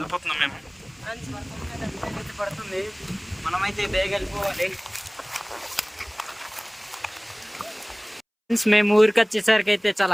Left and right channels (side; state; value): both; identical; correlation 1.00